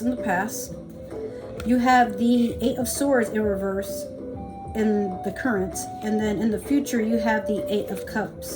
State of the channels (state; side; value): identical; both; correlation 1.00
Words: in the past. You have the Eight of Swords in reverse in the current. And then in the future, you have the Eight of